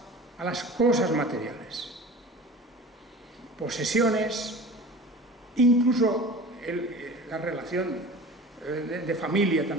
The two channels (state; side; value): normal; both; correlation 0.38